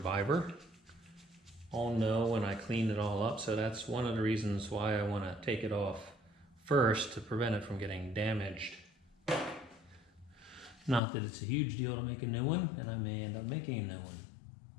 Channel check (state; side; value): drops out; right; at 11.0 s